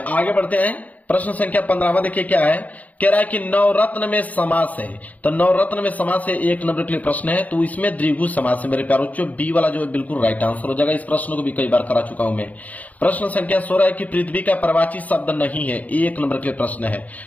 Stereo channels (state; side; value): late; right; 0.075 ms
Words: आगे बढ़ते हैं। प्रश्न संख्या 15वां देखिए क्या है, कह रहा है कि नवरत्न में समास है। तो नवरत्न में समास है, 1 नंबर के लिए प्रश्न है। तो इसमें द्विगु समास है मेरे प्यारे बच्चों, बी वाला जो है बिल्कुल राइट आंसर हो जाएगा। इस प्रश्न को भी कई बार करा चुका हूं मैं। प्रश्न संख्या 16 है कि पृथ्वी का प्रवाची शब्द नहीं है, 1 नंबर के लिए प्रश्न है।